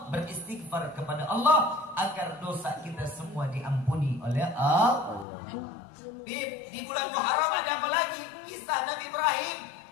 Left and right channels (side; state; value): right; drops out; at 5.2 s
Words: beristighfar kepada Allah agar dosa kita semua diampuni oleh Allah. Bib, di bulan Muharram ada apa lagi? Kisah Nabi Ibrahim.